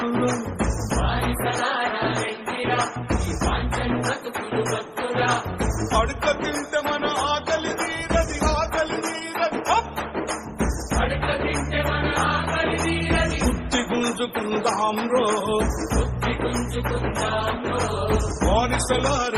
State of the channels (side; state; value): both; identical; correlation 1.00